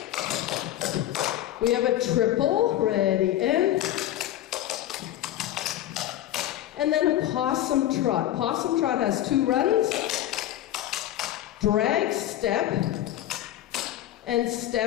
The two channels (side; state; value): right; quieter; 13.2 dB